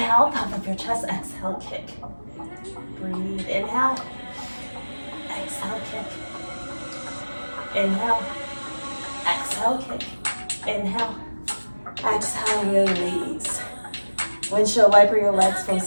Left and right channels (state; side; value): inverted; both; correlation -1.00